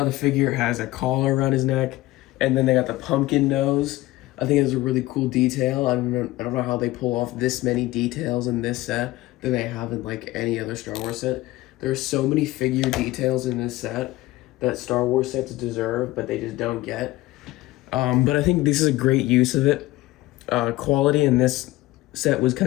the figure has a collar around his neck, and then they got the pumpkin nose. I think it's a really cool detail. I don't know how they pull off this many details in this set that they have in like any other Star Wars set. There's so many figure details in this set that Star Wars sets deserve, but they just don't get. But I think this is a great use of it. Quality in this set was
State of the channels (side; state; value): right; quieter; 18.0 dB